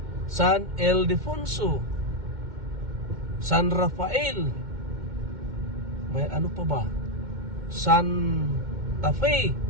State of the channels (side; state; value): left; late; 2.1 ms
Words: San Ildefonso, San Rafael, may ano pa ba, Santa Fe,